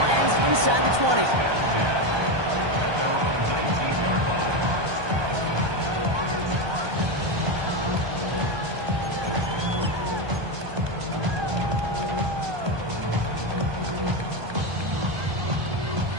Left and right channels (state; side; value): late; left; 1.2 ms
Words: ends inside the 20. At their own 19-yard line.